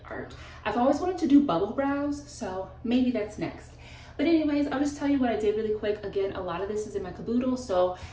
art. I've always wanted to do bubble brows, so maybe that's next. But anyways, I'll just tell you what I did really quick. Again, a lot of this is in my caboodle, so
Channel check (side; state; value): both; identical; correlation 1.00